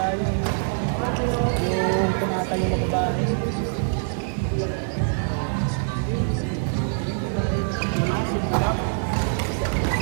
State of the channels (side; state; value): left; silent; digital silence